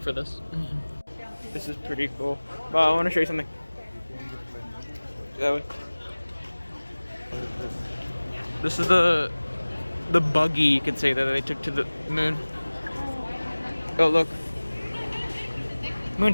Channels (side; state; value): both; inverted; correlation -1.00